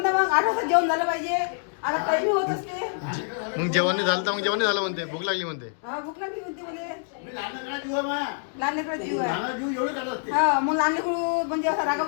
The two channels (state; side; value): silent; right; digital silence